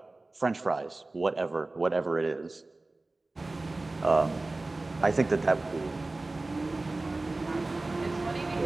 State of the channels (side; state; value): left; quieter; 3.1 dB